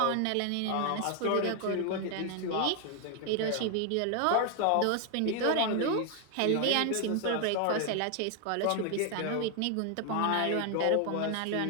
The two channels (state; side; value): different; both; correlation 0.01